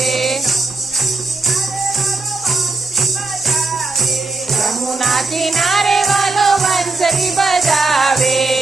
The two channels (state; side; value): quieter; left; 3.6 dB